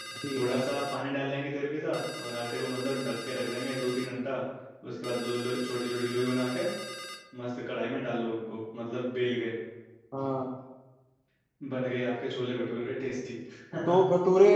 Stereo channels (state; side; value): identical; both; correlation 1.00